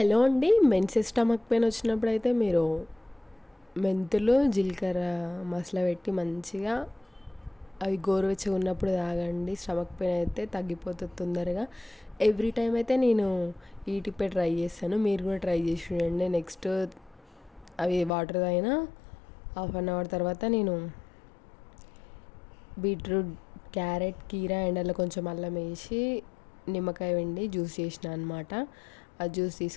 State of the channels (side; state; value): right; drops out; at 18.1 s